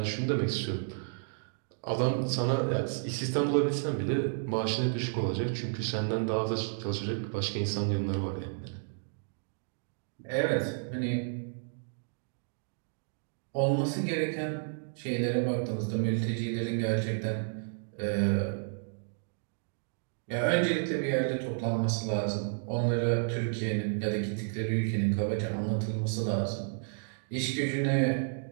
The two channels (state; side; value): silent; left; digital silence